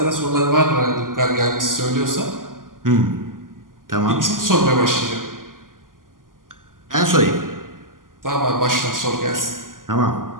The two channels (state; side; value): late; left; 0.90 ms